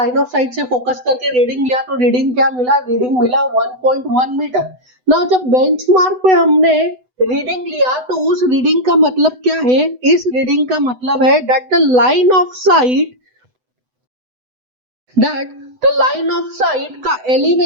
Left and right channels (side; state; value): left; late; 8.0 ms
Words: ऑफ साइट से फोकस करके रीडिंग लिया, तो रीडिंग क्या मिला, रीडिंग मिला 1.1 मीटर। ना जब बेंचमार्क पे हमने रीडिंग लिया तो उस रीडिंग का मतलब क्या है, इस रीडिंग का मतलब है that the line of sight, that the line of sight का